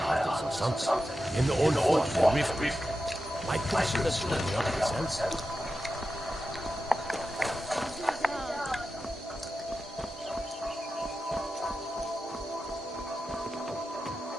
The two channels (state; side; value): normal; both; correlation 0.91